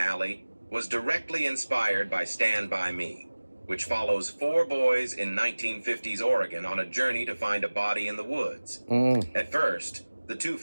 was directly inspired by Stand By Me, which follows four boys in 1950s Oregon on a journey to find a body in the woods. At first, the two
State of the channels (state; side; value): inverted; both; correlation -1.00